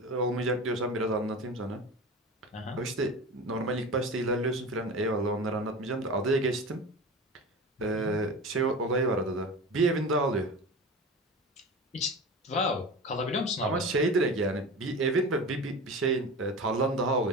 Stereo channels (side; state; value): both; normal; correlation 0.30